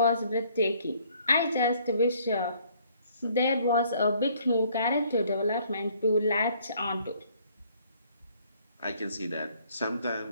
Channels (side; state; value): both; inverted; correlation -0.62